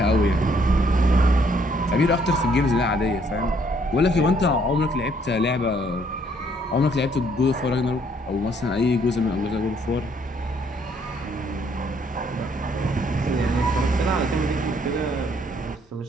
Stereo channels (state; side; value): normal; both; correlation 0.66